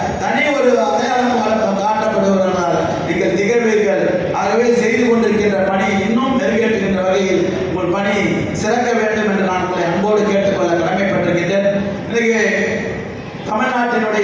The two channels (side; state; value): both; identical; correlation 1.00